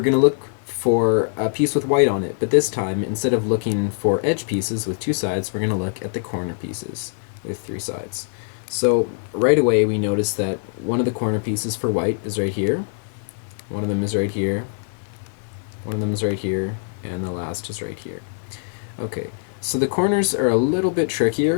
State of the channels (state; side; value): silent; right; 58 dB below the other